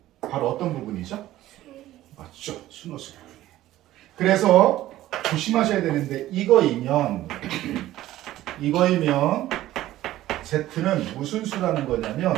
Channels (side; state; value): left; quieter; 14.7 dB